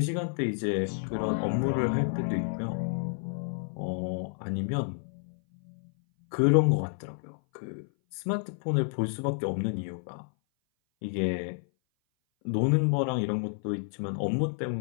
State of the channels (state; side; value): silent; right; 57 dB below the other